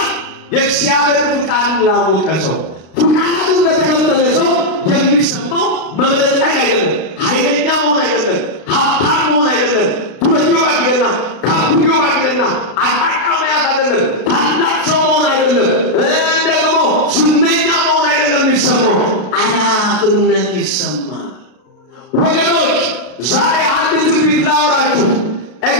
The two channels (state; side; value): late; right; 32 ms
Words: የእግዚአብሔር ፍቃድ ላወቀ ሰው ፍቃዱን ለተከተለ ሰው የሚሰማው መብለጥለጥ አይደለም፣ ኃይለኛ መሆን አይደለም፣ ሀብታም መሆን አይደለም፣ ዱረጆ አይደለም፣ ካፕዮ አይደለም፣ አጣቃ መያዝ አይደለም፣ ታላቅ ሰው መሆን አይደለም፣ ደግሞ ዝነኛ መሆን አይደለም። የሚሰማው አላፍነት ይሰማል። ወገኖች ዛሬ አንድ ትንቢት ላወራችሁ።